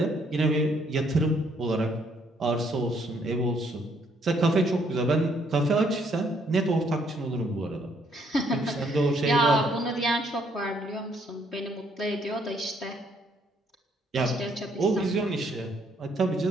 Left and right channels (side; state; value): both; normal; correlation 0.68